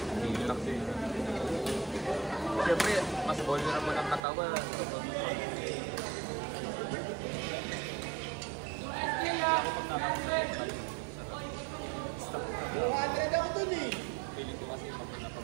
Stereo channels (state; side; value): drops out; left; at 4.2 s